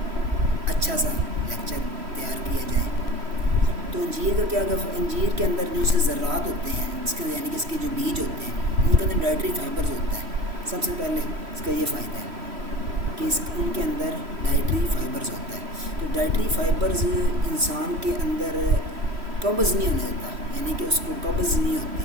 اچھا سا لیکچر تیار کیا جائے. تو انجیر کا کیا انجیر کے اندر جو سے ذرات ہوتے ہیں اس کے یعنی کہ اس کے جو بیج ہوتے ہیں ان کے اندر ڈائٹری فائبرز ہوتا ہے. سب سے پہلے اس کا یہ فائدہ ہے کہ ان کے اندر ڈائٹری فائبرز ہوتا ہے. تو ڈائٹری فائبرز انسان کے اندر قبض نہیں ہونے دیتا، یعنی کہ اس کو قبض نہیں ہوتی،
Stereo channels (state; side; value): late; left; 3.1 ms